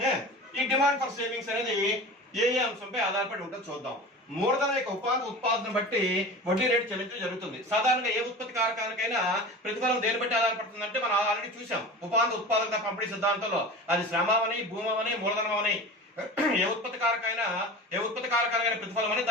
ఈ demand for savings అనేది ఏ అంశంపై ఆధారపడి ఉంటుందో చూద్దాం. మూలధన యొక్క ఉత్పాదన బట్టి వడ్డీ రేటు చెల్లించడం జరుగుతుంది. సాధారణంగా ఏ ఉత్పత్తి కారకానికైనా ప్రతిఫలం దేని బట్టి ఆధారపడుతుంది అంటే మనం ఆల్రెడీ చూసాం ఉత్పాదక పంపిణీ సిద్ధాంతంలో. అది శ్రమని, భూమని, మూలధనం అని. ఏ ఉత్పత్తి కారకాలైన ప్రతిఫలం అని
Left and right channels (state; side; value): normal; both; correlation 0.34